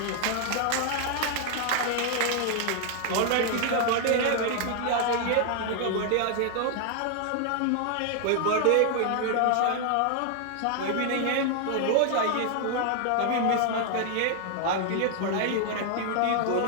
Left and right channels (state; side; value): different; both; correlation 0.00